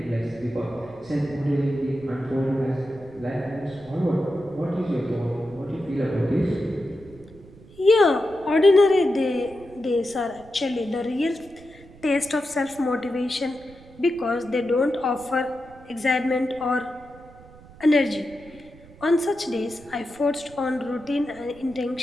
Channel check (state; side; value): noise; right; rumble, 22 dB below the sound